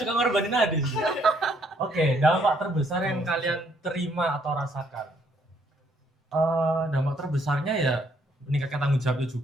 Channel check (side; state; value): both; normal; correlation 0.68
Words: ngorbanin Adis. Oke, dampak terbesar yang kalian terima atau rasakan. Dampak terbesarnya ya meningkatkan tanggung jawabnya